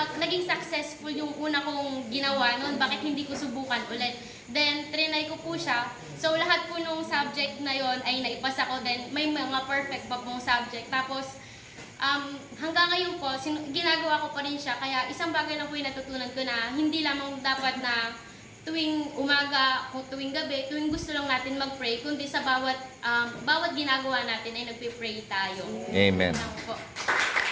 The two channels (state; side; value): identical; both; correlation 1.00